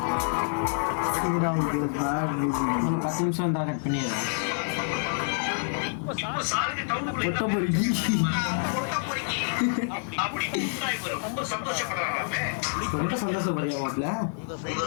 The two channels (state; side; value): silent; right; 60 dB below the other